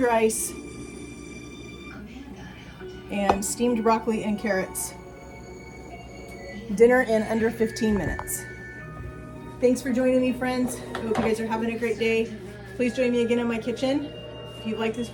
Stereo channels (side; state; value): both; identical; correlation 1.00